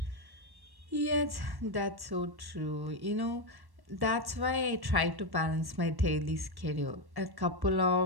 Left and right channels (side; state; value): left; late; 1.1 ms